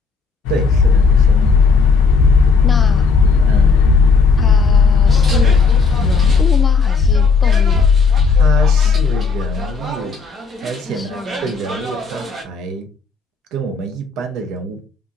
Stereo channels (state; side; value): quieter; right; 4.8 dB